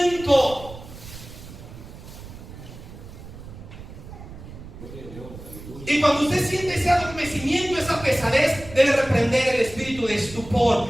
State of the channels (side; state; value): right; noise; rumble, 15 dB below the sound